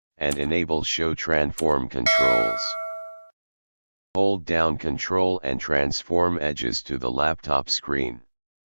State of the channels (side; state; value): both; inverted; correlation -1.00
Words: and enable Show Transform controls. Hold down Ctrl and transform edges to the laptop screen.